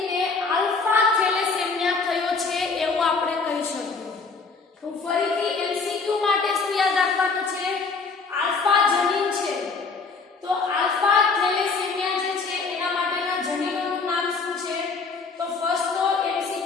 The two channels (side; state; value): right; quieter; 4.5 dB